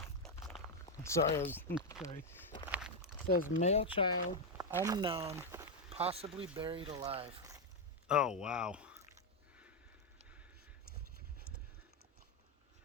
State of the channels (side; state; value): both; normal; correlation 0.04